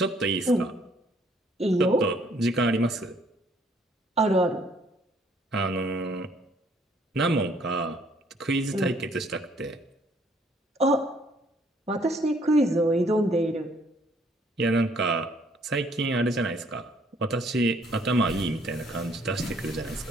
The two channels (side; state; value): both; normal; correlation 0.63